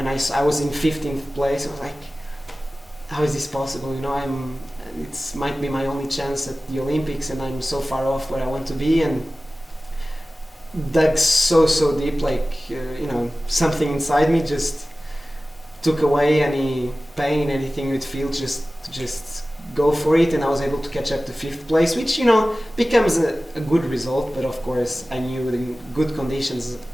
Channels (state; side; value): normal; both; correlation 0.96